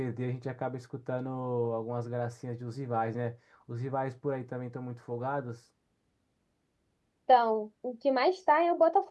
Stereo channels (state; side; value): identical; both; correlation 1.00